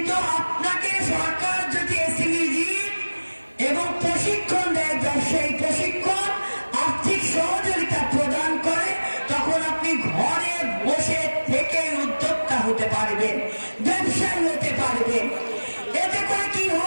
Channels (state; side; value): inverted; both; correlation -1.00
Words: আপনাকে সরকার যদি এসএমই এবং প্রশিক্ষণ দেয়, ব্যবসায়ী প্রশিক্ষণ, আর্থিক সহযোগিতা প্রদান করে, তখন আপনি ঘরে বসে থেকে উদ্যোক্তা হতে পারবেন, ব্যবসায়ী হতে পারবেন। এতে করে কি